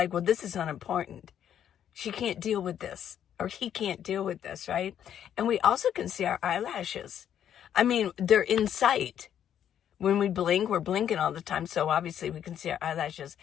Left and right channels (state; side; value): quieter; right; 9.7 dB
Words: well, this is unimportant. She can't deal with this, or he can't deal with this, right? And we also can see our eyelashes. I mean, they're in sight. When we blink, we're blinking all the time, so obviously we can see our eyelashes.